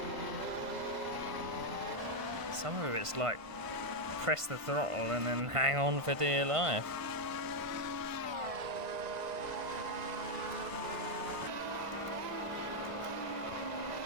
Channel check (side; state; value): left; late; 1.5 ms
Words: Some of it's like press the throttle and then hang on for dear life.